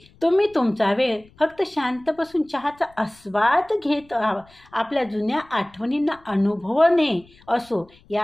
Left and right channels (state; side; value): noise; left; rumble, 28 dB below the sound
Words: तुम्ही तुमचा वेळ फक्त शांत बसून चहाचा आस्वाद घेत आपल्या जुन्या आठवणींना अनुभवणे असो,